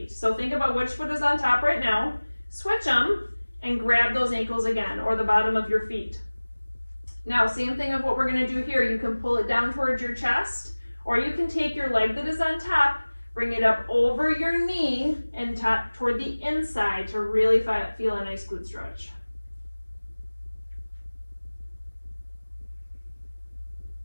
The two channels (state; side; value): inverted; both; correlation -1.00